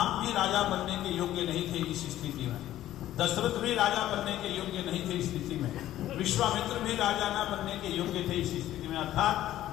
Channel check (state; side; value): quieter; right; 13.5 dB